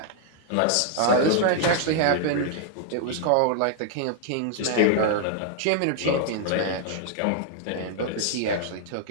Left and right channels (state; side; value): different; both; correlation 0.00